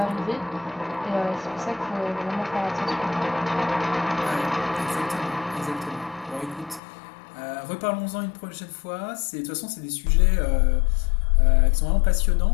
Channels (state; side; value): drops out; right; at 6.8 s